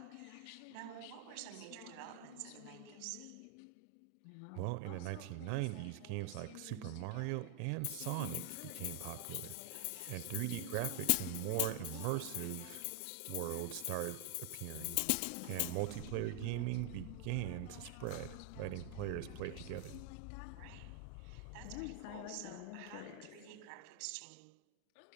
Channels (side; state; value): both; different; correlation 0.00